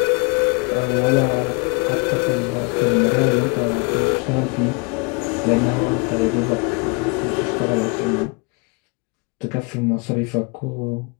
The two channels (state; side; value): quieter; right; 32.1 dB